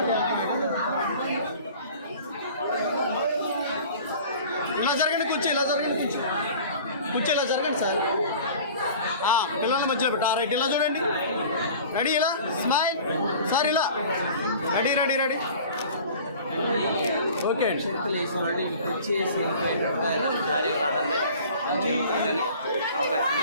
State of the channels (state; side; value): inverted; both; correlation -0.44